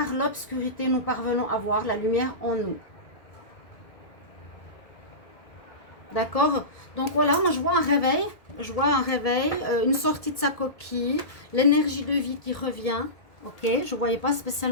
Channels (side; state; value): right; late; 1.6 ms